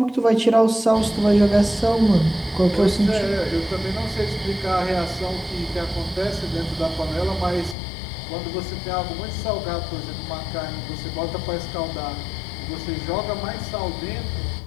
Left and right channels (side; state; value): right; drops out; at 7.8 s